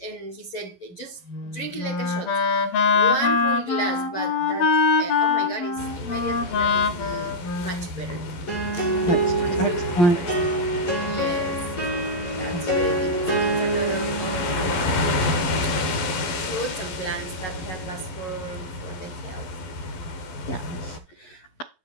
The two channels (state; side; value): late; right; 12 ms